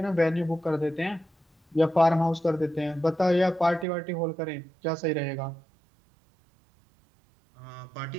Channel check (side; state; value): left; drops out; at 3.9 s